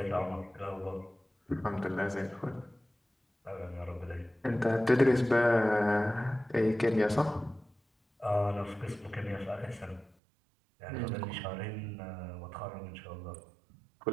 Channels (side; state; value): left; drops out; at 10.2 s